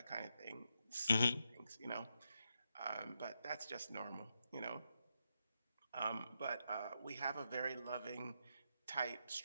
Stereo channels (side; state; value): both; inverted; correlation -0.83